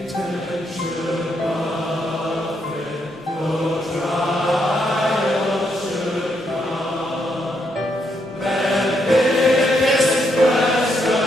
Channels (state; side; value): normal; both; correlation 0.77